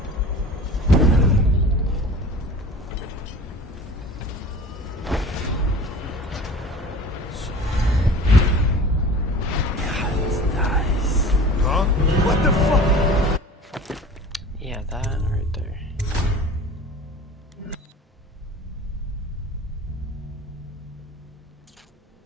Huh? What the fuck? Yeah, that right there.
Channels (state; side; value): normal; both; correlation 0.40